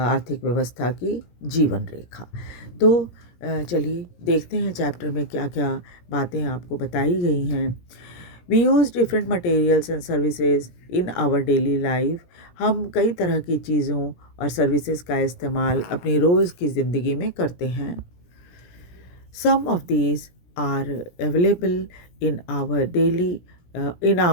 व्यवस्था की जीवन रेखा। तो चलिए देखते हैं चैप्टर में क्या क्या बातें आपको बताई गई हैं। We use different materials and services in our daily life. हम कई तरह की चीज़ों और सर्विसेज का इस्तेमाल अपनी रोज़ की ज़िंदगी में करते हैं। Some of these are available in our daily in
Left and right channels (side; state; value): right; late; 17 ms